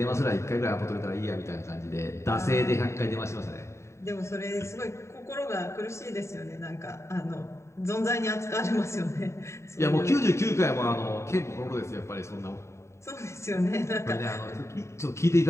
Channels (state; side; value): late; right; 0.14 ms